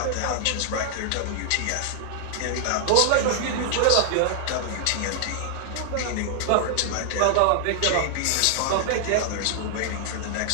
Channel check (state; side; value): different; both; correlation 0.00